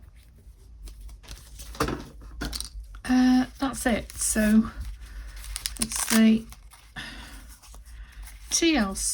that's it. So it's the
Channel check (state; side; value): identical; both; correlation 1.00